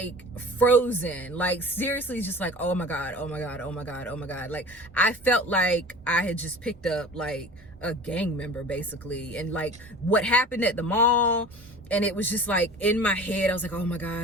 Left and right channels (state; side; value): normal; both; correlation 0.40